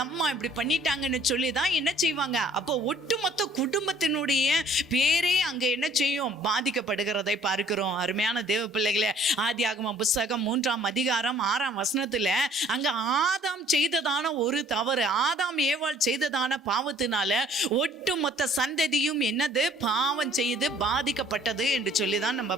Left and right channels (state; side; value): normal; both; correlation 0.57